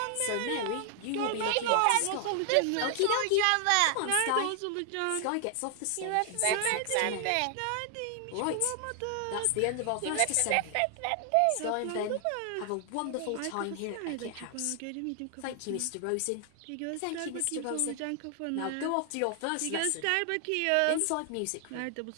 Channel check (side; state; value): both; different; correlation 0.00